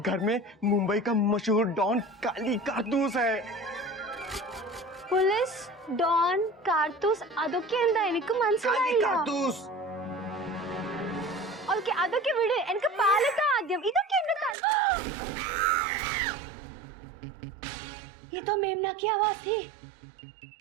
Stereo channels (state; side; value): drops out; left; at 14.6 s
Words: घर में मुंबई का मशहूर डॉन काली कारतूस है। പോലീസ് ഡോൺ കാർത്തൂസ് അതൊക്കെ എന്താ എനിക്ക് काली മനസ്സിലായില്ല कारतूस। ഓക്കെ അതൊക്കെ വിട് എനിക്ക് പാലത്താ ആദ്യം ഇതൊക്കെ എന്റെ ये तो मेमना की आवाज थी